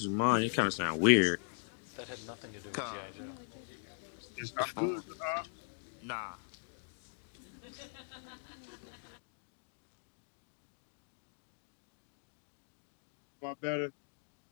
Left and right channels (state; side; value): silent; right; digital silence